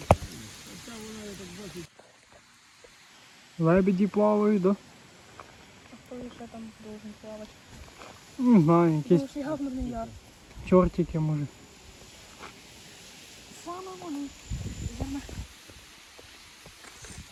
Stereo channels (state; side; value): identical; both; correlation 1.00